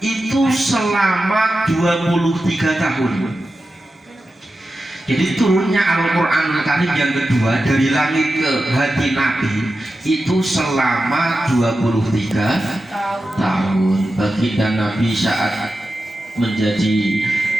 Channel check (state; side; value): normal; both; correlation 0.92